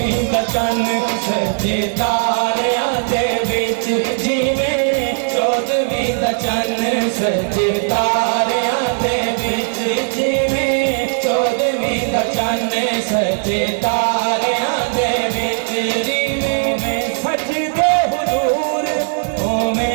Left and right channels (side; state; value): left; silent; digital silence